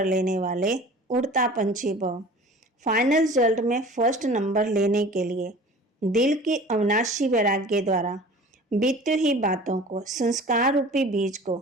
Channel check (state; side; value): normal; both; correlation 0.42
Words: लेने वाले उड़ता पंछी भव। फाइनल रिजल्ट में फर्स्ट नंबर लेने के लिए दिल की अविनाशी वैराग्य द्वारा बीती हुई बातों को, संस्कार रूपी बीज